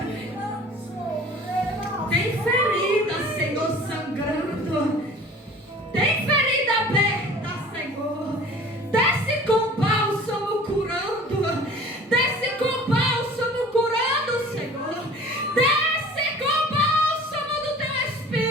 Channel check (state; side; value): normal; both; correlation 0.45